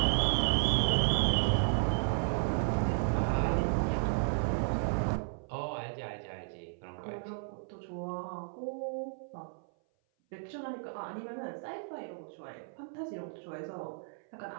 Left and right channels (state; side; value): silent; left; 55 dB below the other